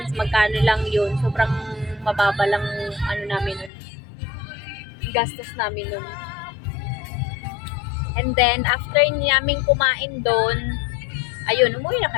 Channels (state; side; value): drops out; right; at 3.7 s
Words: magkano lang yun. Sobrang mababa lang namin nun. Gastos namin nun. And then, after namin kumain doon, ayun, umuwi na